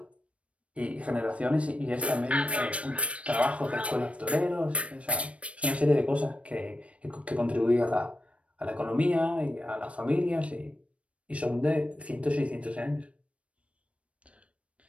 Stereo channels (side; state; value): left; late; 0.063 ms